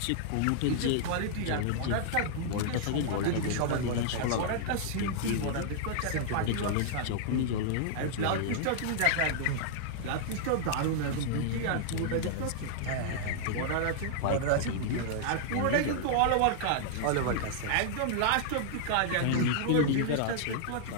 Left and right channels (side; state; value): both; different; correlation -0.01